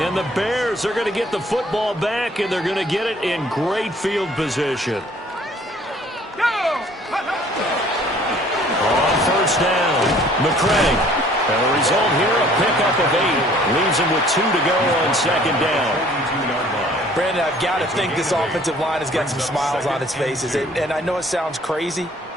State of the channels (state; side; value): normal; both; correlation 0.56